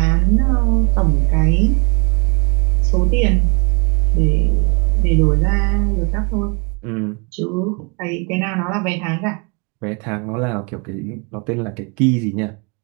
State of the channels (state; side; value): quieter; left; 34.1 dB